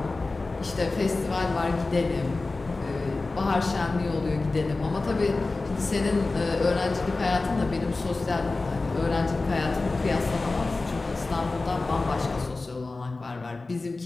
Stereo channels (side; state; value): right; quieter; 3.5 dB